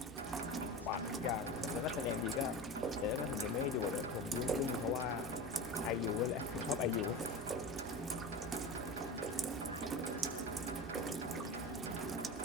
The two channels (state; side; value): normal; both; correlation 0.28